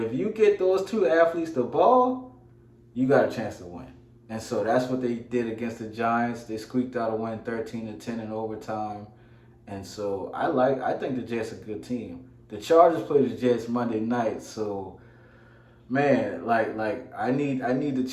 you get those two athletes the ball, you got a chance to win. And so that's what they did against the Giants. They squeaked out a win 13-10 in overtime. And so I think the Jets are a good team. The Chargers play the Jets Monday night, so man, like I need the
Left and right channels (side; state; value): both; identical; correlation 1.00